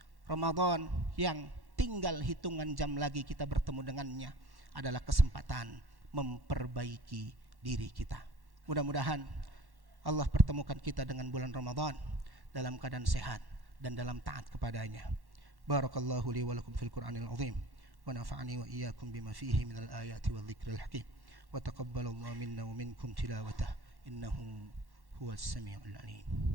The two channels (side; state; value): left; late; 1.1 ms